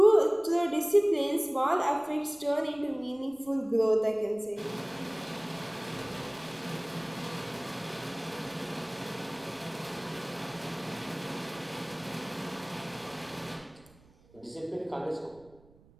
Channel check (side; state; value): right; noise; rumble, 27 dB below the sound